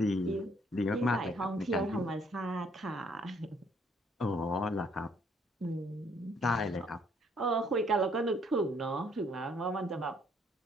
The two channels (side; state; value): both; normal; correlation 0.65